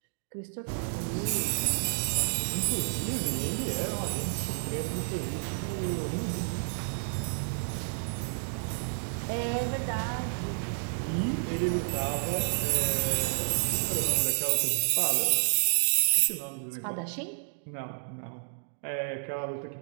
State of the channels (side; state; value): left; silent; digital silence